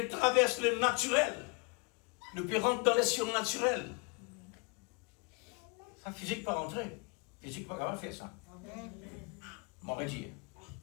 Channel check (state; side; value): quieter; right; 31.4 dB